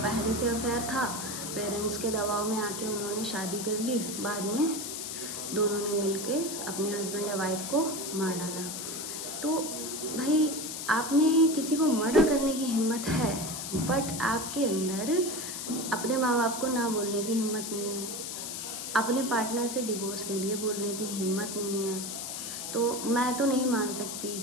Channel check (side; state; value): left; noise; hiss, 6 dB below the sound